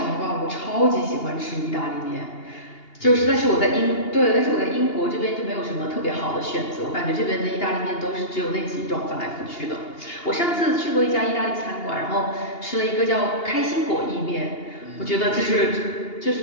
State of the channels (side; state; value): right; late; 2.8 ms